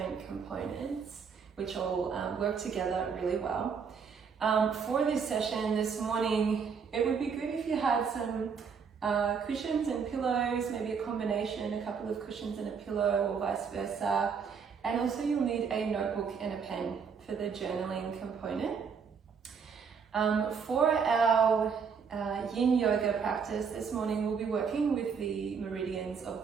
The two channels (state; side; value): quieter; left; 6.1 dB